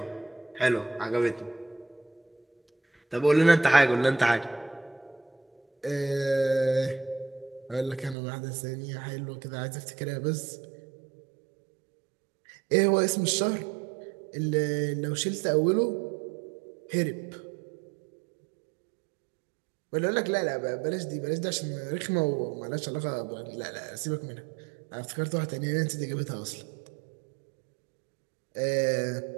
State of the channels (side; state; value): left; drops out; at 8.2 s